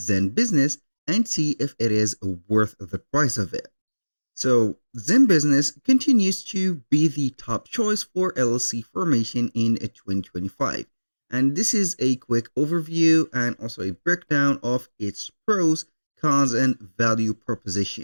and see if it is worth the price of it. So, Zenbusiness continues to be the top choice for LLC formation in 2025. And this is a quick overview and also a breakdown of its pros, cons, and value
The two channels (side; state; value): both; inverted; correlation -1.00